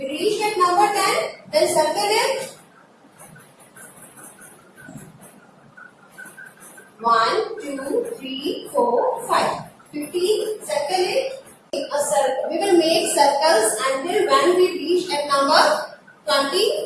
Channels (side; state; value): both; identical; correlation 1.00